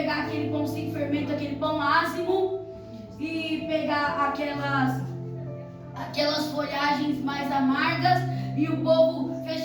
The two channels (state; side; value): identical; both; correlation 1.00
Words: aquele pão sem fermento, aquele pão ázimo, e pegar aquelas folhagens mais amargas, e o povo